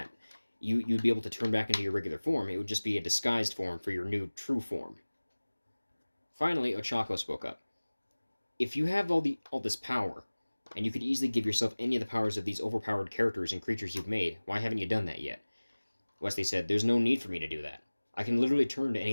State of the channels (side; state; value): both; inverted; correlation -1.00